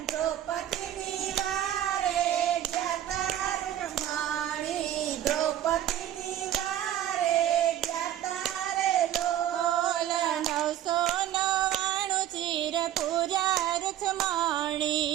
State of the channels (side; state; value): left; quieter; 11.9 dB